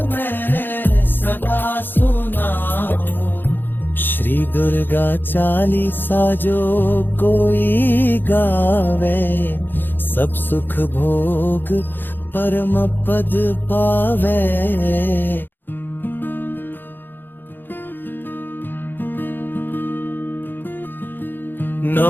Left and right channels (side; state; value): right; late; 0.095 ms